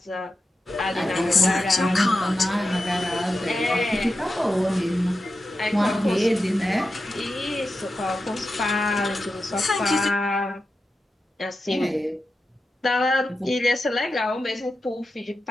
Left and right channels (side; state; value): both; normal; correlation 0.90